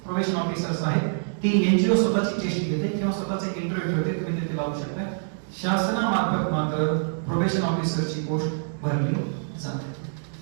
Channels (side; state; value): left; silent; digital silence